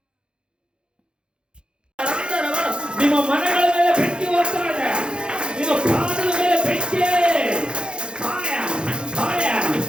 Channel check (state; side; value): late; left; 0.051 ms